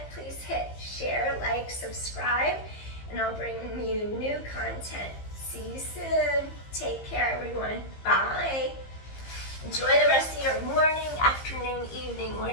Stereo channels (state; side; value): late; right; 15 ms